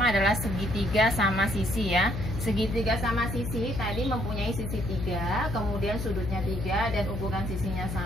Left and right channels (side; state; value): left; noise; hum, 5 dB below the sound